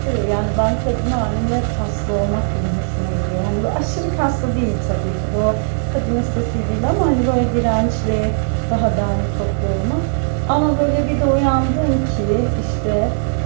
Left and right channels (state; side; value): silent; left; 66 dB below the other